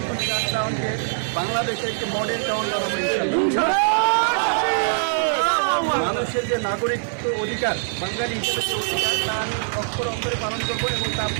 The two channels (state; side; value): silent; left; 63 dB below the other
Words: টাউনকে বাংলাদেশের একটি মডেল টাউন বানাবো ইনশাআল্লাহ। মানুষের যে নাগরিকত্ব অধিকার, বাঙালি হিসেবে যে অধিকার, তা আমি অক্ষর অক্ষরে পালন করবো এবং তা